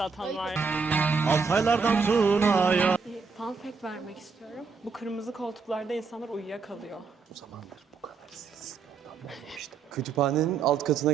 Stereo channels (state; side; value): quieter; left; 5.1 dB